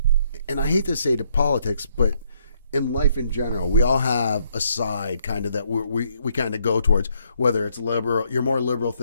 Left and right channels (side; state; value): both; inverted; correlation -0.71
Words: and I hate to say to politics, but in life in general, we all have a side kind of that we kind of go towards, whether it's liberal, you're more liberal